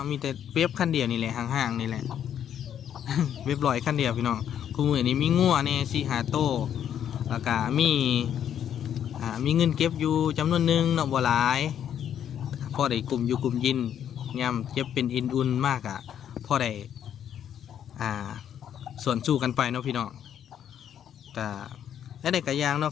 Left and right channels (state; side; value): quieter; right; 9.6 dB